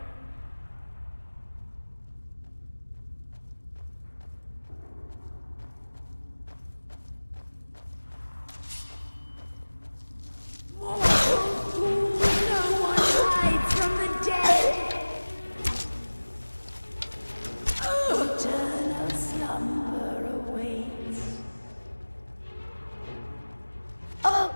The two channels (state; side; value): inverted; both; correlation -1.00